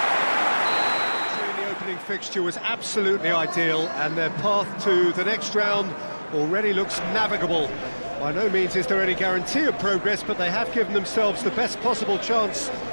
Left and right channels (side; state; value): both; inverted; correlation -1.00